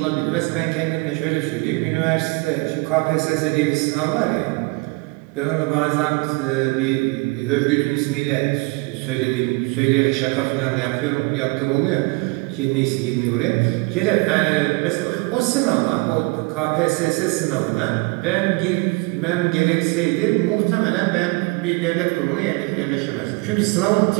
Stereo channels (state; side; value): quieter; left; 26.9 dB